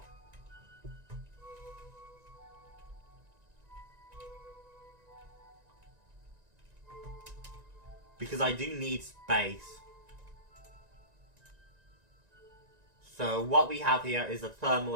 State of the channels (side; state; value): left; late; 1.9 ms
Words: Because I do need space. So what we have here is a thermal